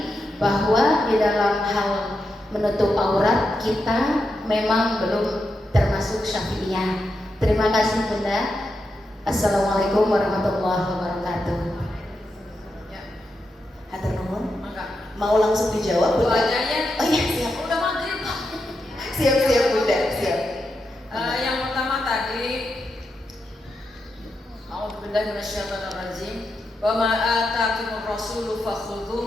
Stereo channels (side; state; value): both; normal; correlation 0.86